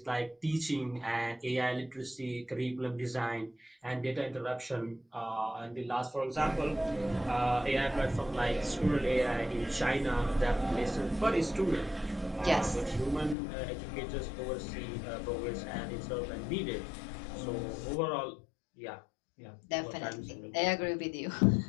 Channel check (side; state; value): right; drops out; at 13.4 s